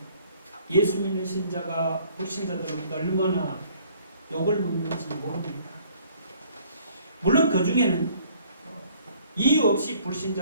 예수 믿는 신자가 불신자들로부터 얼마나 욕을 먹는지 모릅니다. 물론 그 중에는 이유 없이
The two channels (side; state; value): both; inverted; correlation -0.58